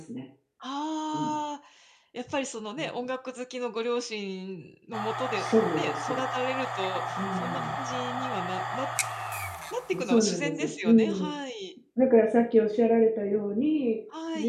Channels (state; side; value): identical; both; correlation 1.00